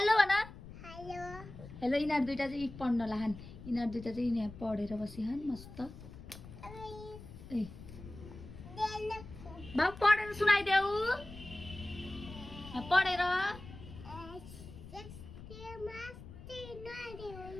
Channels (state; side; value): noise; left; rumble, 14 dB below the sound